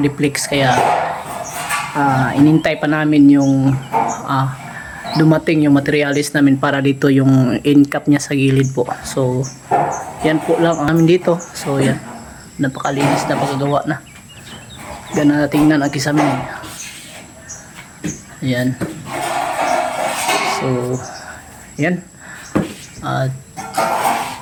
kaya inintay pa namin yung dumating yung materialis namin para dito yung in-cap niya sa gilid po. So yan po lang ang amin dito. So yan, napakalinis na pagkagawa na. Gana tingnan ang kisame. Ayan. So yan. At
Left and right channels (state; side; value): identical; both; correlation 1.00